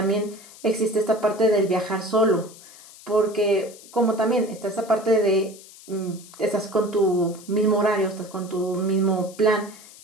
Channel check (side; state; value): left; noise; hiss, 20 dB below the sound